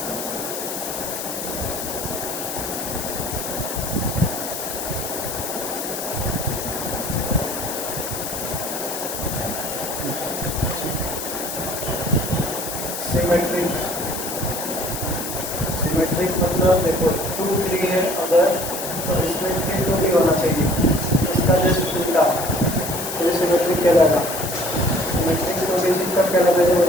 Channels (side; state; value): left; noise; hiss, 6 dB below the sound